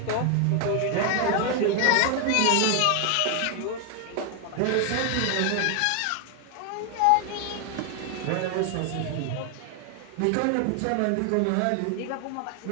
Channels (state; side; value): different; both; correlation 0.00